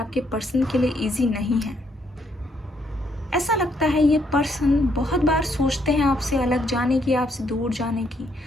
पर्सन के लिए इजी नहीं है। ऐसा लगता है ये पर्सन बहुत बार सोचते हैं आपसे अलग जाने की, आपसे दूर जाने की,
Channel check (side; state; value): both; normal; correlation 0.72